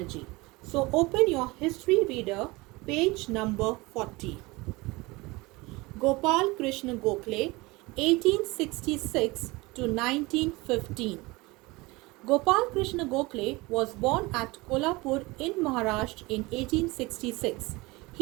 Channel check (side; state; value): left; quieter; 23.0 dB